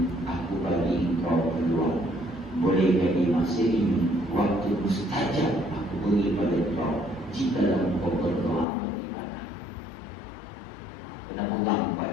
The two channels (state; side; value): drops out; right; at 8.7 s